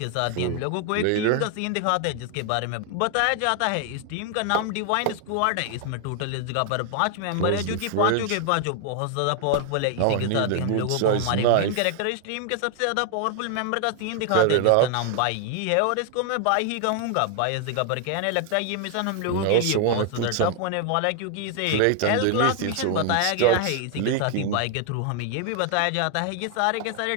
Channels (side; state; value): both; different; correlation 0.00